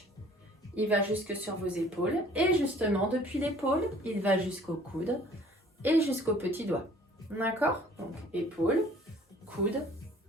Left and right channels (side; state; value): both; normal; correlation 0.53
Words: il va jusque sur vos épaules, et justement, depuis l'épaule, il va jusqu'au coude et jusqu'au petit doigt, d'accord? Donc, épaule, coude,